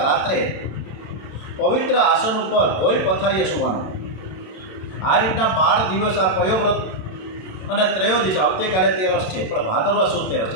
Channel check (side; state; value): right; late; 27 ms